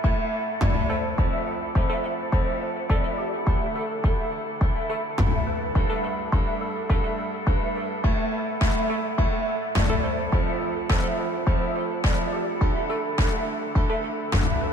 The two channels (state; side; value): normal; both; correlation 0.68